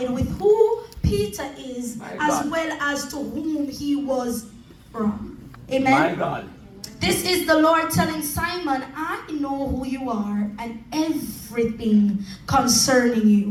with who Peter is as well as to whom he was from. Amen? My God. This is the Lord telling Simon, I know who you are and everything concerning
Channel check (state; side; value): identical; both; correlation 1.00